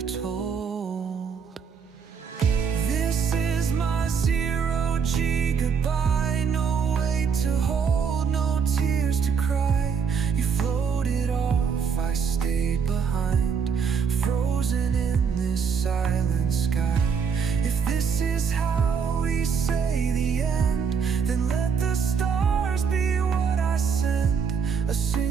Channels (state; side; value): quieter; left; 6.3 dB